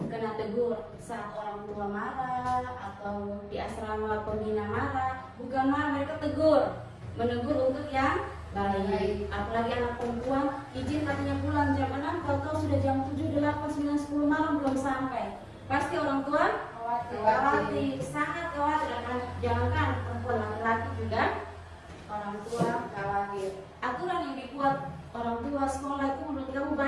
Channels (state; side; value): identical; both; correlation 1.00